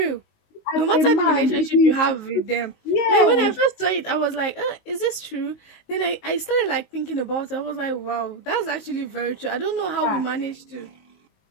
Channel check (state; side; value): late; right; 19 ms